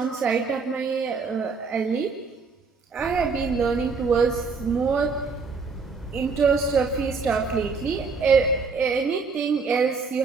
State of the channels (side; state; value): left; quieter; 4.8 dB